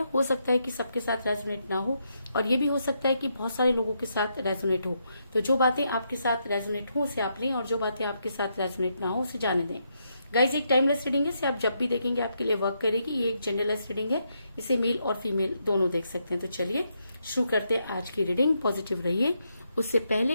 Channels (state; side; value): inverted; both; correlation -0.80